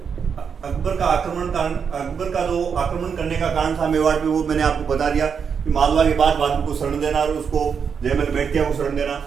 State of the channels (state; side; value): quieter; left; 6.6 dB